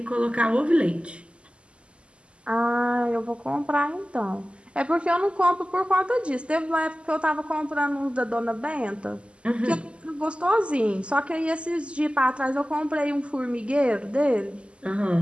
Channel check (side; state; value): left; late; 0.054 ms